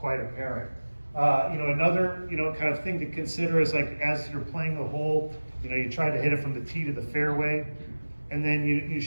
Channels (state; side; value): inverted; both; correlation -1.00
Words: apparent. Another kind of thing to consider is like as you're playing the hole, you try to hit it from the tee to the fairway, and then you